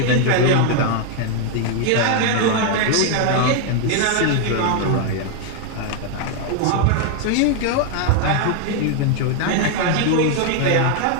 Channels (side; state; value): both; different; correlation 0.00